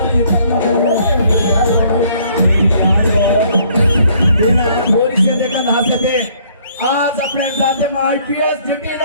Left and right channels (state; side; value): inverted; both; correlation -0.62